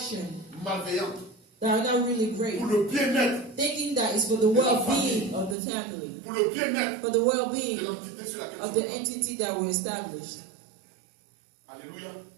malveillantes that are not really great, pour le bien-être, thinking that it's for the well-being of the family, pour le bien-être for the well-being de l'entité sur laquelle of nous the sommes. entity that we established. Alléluia.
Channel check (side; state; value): left; drops out; at 5.6 s